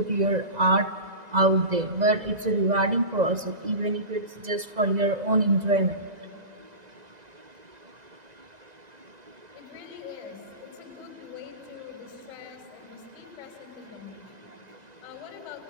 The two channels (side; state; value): left; late; 2.0 ms